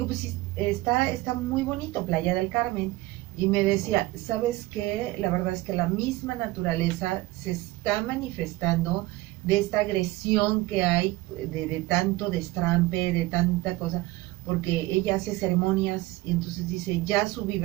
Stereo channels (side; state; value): left; quieter; 19.0 dB